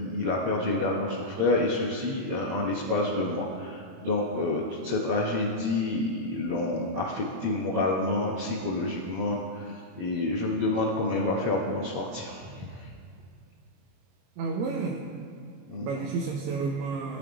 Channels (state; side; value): late; left; 22 ms